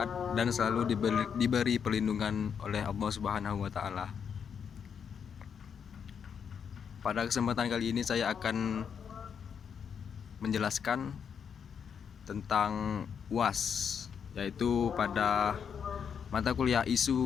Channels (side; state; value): right; quieter; 7.2 dB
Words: dan selalu diberi perlindungan oleh Allah Subhanahu wa Ta'ala. Pada kesempatan kali ini saya akan menjelaskan tentang UAS, yaitu pada mata kuliah